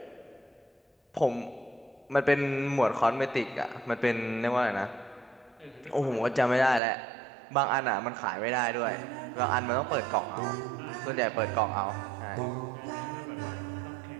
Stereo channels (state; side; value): drops out; left; at 6.8 s